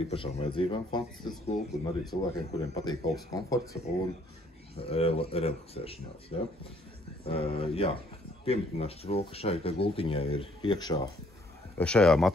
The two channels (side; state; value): both; normal; correlation 0.64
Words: īpašām vajadzībām fantastisks gultu, un arī cilvēkiem, kuriem patīk augsts komforts un relaksēšanās. Piemetināšu to, ka šai gultiņai ir iekšā, šajā